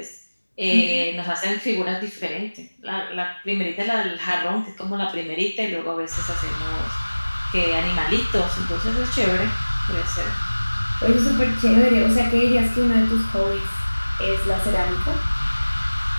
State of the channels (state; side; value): inverted; both; correlation -1.00